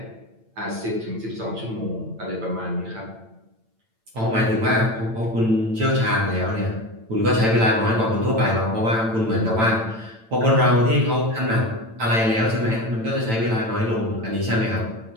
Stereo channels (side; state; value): left; late; 8.9 ms